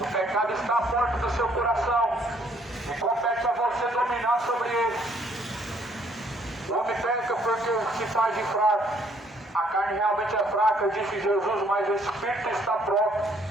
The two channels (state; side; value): normal; both; correlation 0.65